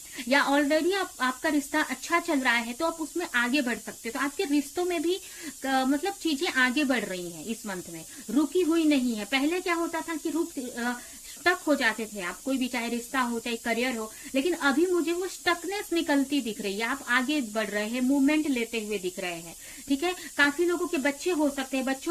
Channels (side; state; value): both; identical; correlation 1.00